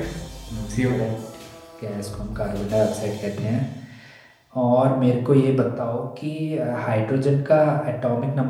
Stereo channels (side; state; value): both; identical; correlation 1.00